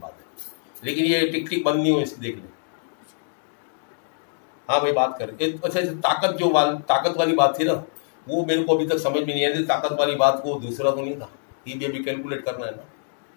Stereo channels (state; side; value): silent; right; digital silence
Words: लेकिन ये टिक टिक बंद नहीं हो, इसकी देख ले। हाँ भाई बात कर। अच्छा, ताकत वाली बात थी ना, वो मेरे को अभी तक समझ में नहीं आई। ताकत वाली बात को दूसरा तो नहीं था, ये भी अभी कैलकुलेट करना है ना।